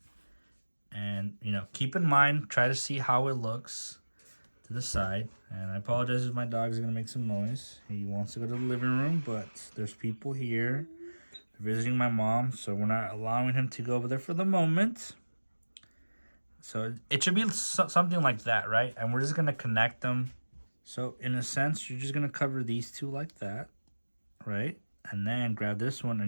and you know, keep in mind, try to see how it looks to the side. And I apologize if my dog is gonna make some noise. He wants to go to the living room, but there's people here visiting my mom, so we're not allowing him to go over there for the moment. So it should be something like that, right? And we're just gonna connect them. So in a sense, you're just gonna cover these 2 like that, right? And then grab this one, and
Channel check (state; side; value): inverted; both; correlation -1.00